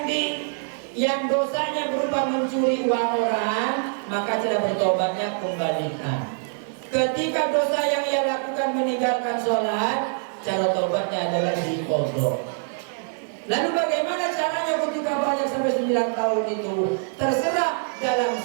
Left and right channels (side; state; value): left; silent; digital silence